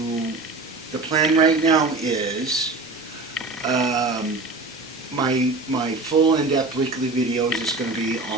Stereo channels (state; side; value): quieter; left; 3.4 dB